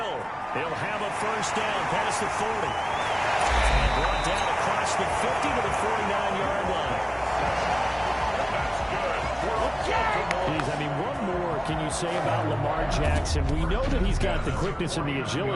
He'll have a first down past the 40. And brought down across the 50 to the 49-yard line. That's good. Geez, I mean, what more can you say about Lamar Jackson? We know that he's got the quickness and the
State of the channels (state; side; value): identical; both; correlation 1.00